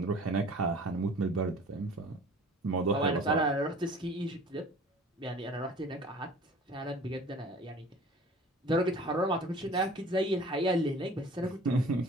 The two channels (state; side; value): normal; both; correlation 0.46